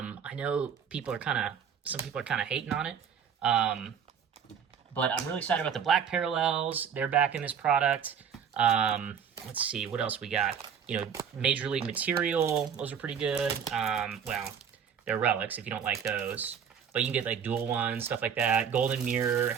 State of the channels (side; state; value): left; quieter; 7.6 dB